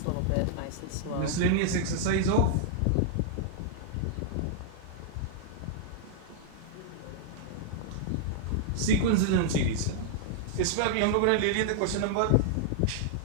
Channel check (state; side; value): different; both; correlation -0.01